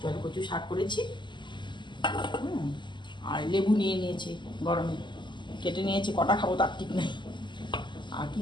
জলকচুর শাক করেছি। আর লেবু নিয়ে নিয়েছি, গরমে কেটে নিয়েছি, কটা খাবো তার ঠিক নেই। আর কি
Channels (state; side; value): late; right; 0.22 ms